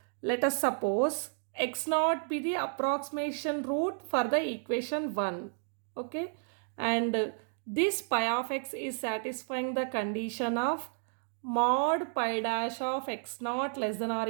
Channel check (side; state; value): left; silent; digital silence